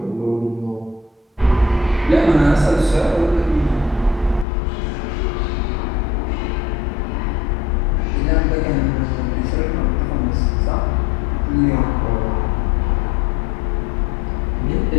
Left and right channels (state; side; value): drops out; right; at 4.5 s